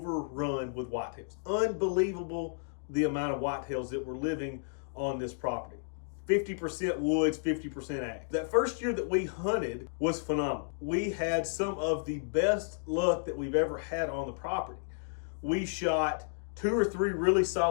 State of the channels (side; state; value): right; silent; digital silence